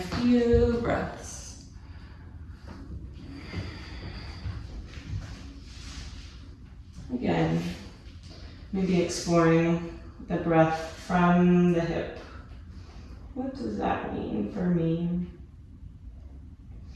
few breaths. Again, maybe exploring the breath from the hip. What does that mean for me?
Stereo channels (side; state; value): both; identical; correlation 1.00